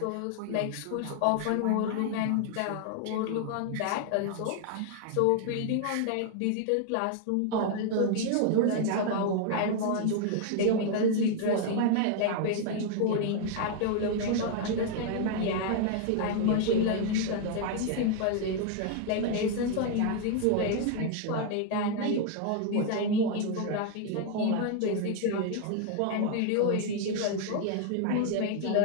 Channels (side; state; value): both; different; correlation 0.00